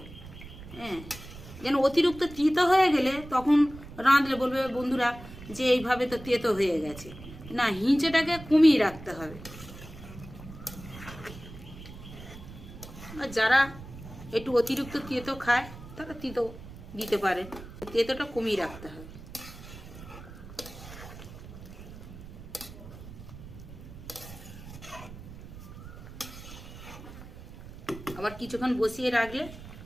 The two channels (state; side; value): noise; right; rumble, 15 dB below the sound